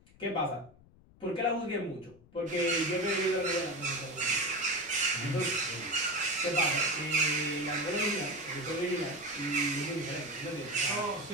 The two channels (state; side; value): noise; left; rumble, 26 dB below the sound